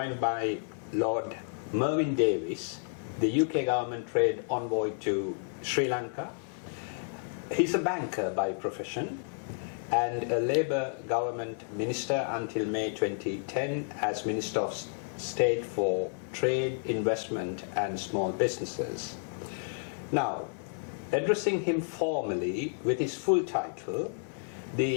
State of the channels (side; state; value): right; silent; digital silence